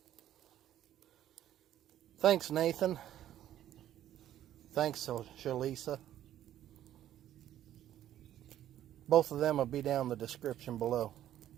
Thanks, Nathan. Thanks, Shlisa. Both of them will be down in the description below.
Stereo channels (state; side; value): quieter; left; 11.9 dB